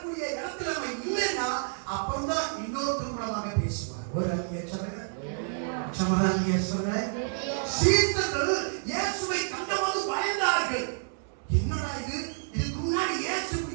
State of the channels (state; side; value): silent; left; digital silence